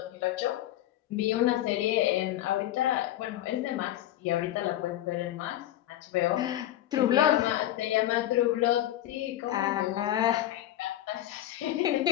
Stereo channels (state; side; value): quieter; right; 13.3 dB